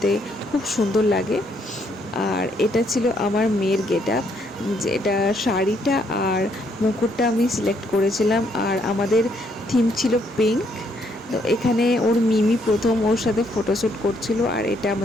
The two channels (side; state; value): both; normal; correlation 0.71